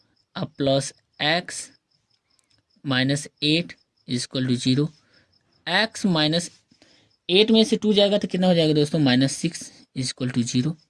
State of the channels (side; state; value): both; identical; correlation 1.00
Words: + x -8 = 0। x -8 में से 2 जाएगा तो कितना हो जाएगा दोस्तों -6 = 0।